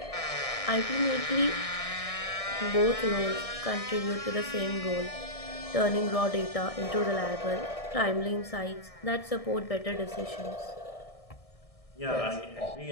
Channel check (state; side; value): late; right; 1.6 ms